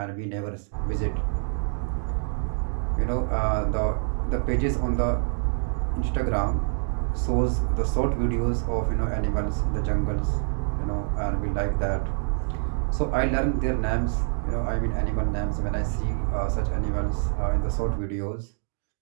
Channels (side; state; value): left; silent; digital silence